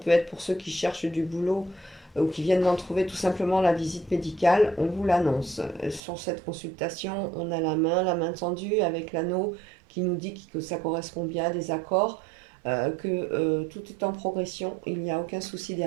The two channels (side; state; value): left; drops out; at 6.0 s